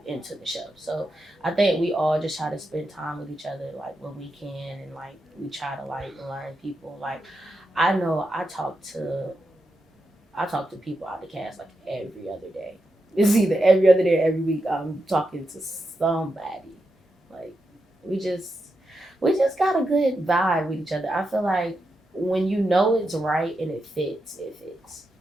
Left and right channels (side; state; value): both; normal; correlation 0.86